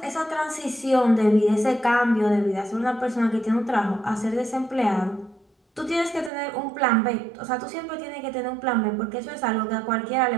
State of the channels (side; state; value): left; drops out; at 6.3 s